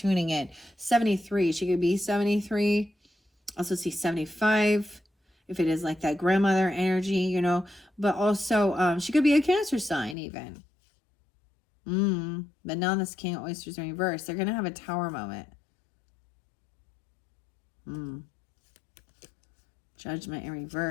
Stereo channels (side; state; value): right; drops out; at 10.2 s